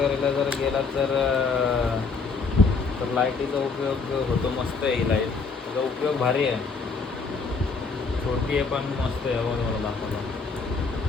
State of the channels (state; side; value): quieter; right; 4.5 dB